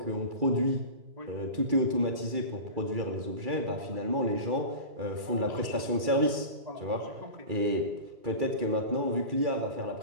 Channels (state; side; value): late; left; 2.3 ms